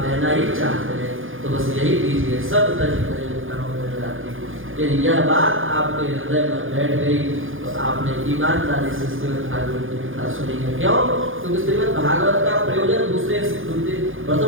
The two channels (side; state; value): left; late; 0.58 ms